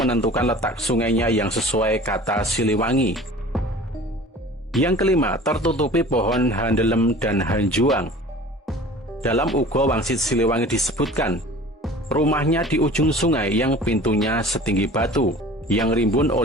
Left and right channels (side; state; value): both; normal; correlation 0.43